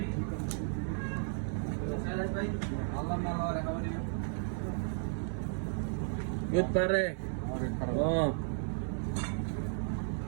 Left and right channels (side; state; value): left; silent; 55 dB below the other